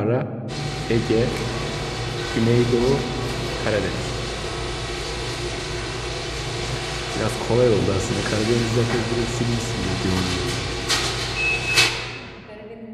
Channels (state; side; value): identical; both; correlation 1.00